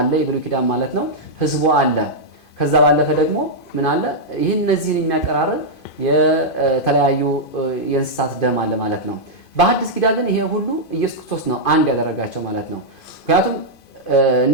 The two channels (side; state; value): right; late; 2.5 ms